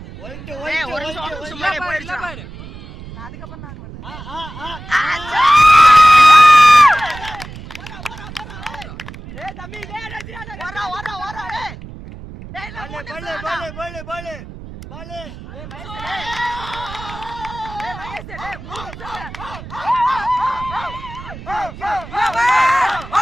அதுக்கப்புறம் நான் பண்ணேன் தம்பி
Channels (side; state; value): right; noise; rumble, 14 dB below the sound